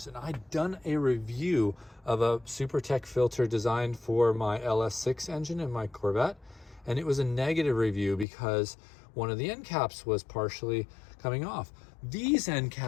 And I'd done a review of a SuperTech filter designed for my LS6 engine in my Corvette. And it was a negative review because one of the end caps was partially coming off. These end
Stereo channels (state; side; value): drops out; right; at 8.2 s